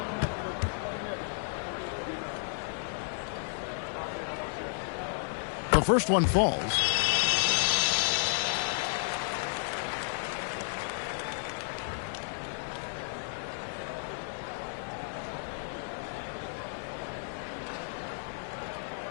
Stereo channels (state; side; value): silent; right; digital silence